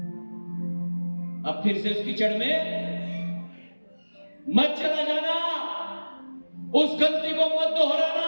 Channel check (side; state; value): both; inverted; correlation -1.00